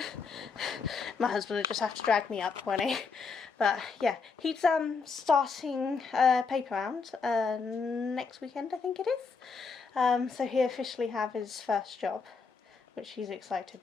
My husband will just have to drag me up when he... But yeah, he's starting a paper round next weekend, I think it is. So he'll officially have his first job, which he's excited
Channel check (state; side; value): quieter; right; 4.9 dB